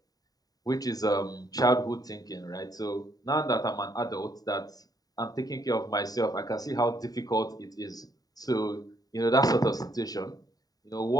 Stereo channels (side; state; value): right; late; 0.18 ms